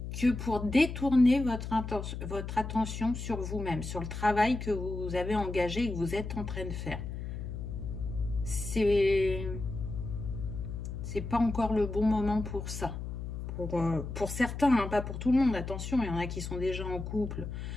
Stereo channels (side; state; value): left; noise; hum, 6 dB below the sound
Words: que pour détourner votre attention sur vous-même, sur le travail que vous avez engagé et que vous êtes en train de faire. C'est pas encore le bon moment pour ça. Pour certains, hein, pas pour tout le monde, attention, il y en a qui sont déjà en couple